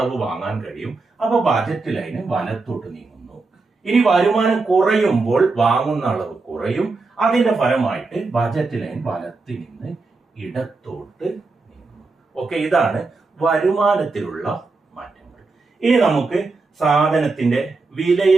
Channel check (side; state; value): left; quieter; 3.8 dB